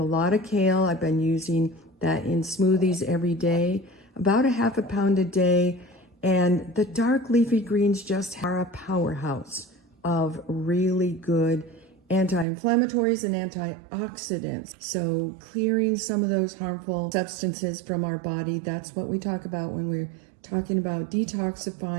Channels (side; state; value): left; drops out; at 12.5 s